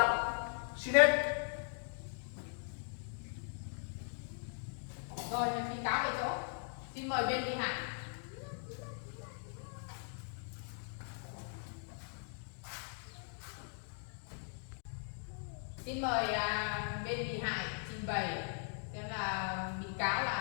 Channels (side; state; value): right; silent; 51 dB below the other